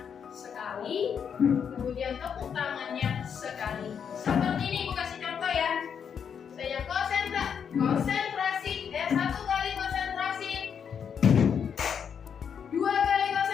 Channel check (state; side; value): quieter; right; 7.4 dB